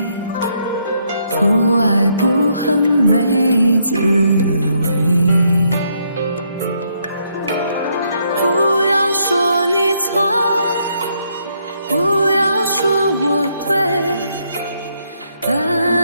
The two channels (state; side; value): inverted; both; correlation -0.74